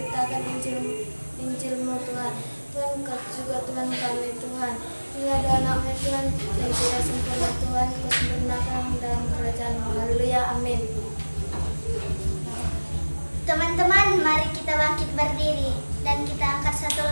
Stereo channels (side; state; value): both; inverted; correlation -1.00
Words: Injil-Mu Tuhan. Tuhan kasih juga Tuhan kami Tuhan, ini ada anak-Mu Tuhan yang tidak sempurna Tuhan, Kau sempurnakan dalam kerajaan-Mu. Haleluya, amin. Teman-teman, mari kita bangkit berdiri dan kita angkat satu